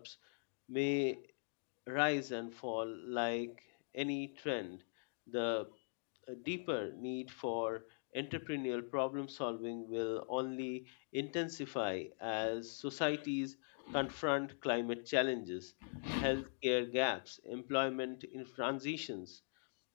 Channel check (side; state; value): right; silent; digital silence